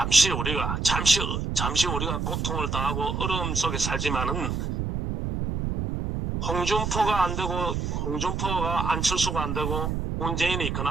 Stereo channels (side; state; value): right; noise; rumble, 2 dB below the sound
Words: 우리가 고통을 당하고 어려움 속에 살지만은 홍준표가 안 되고 홍준표가 안철수가 안 되고 문재인이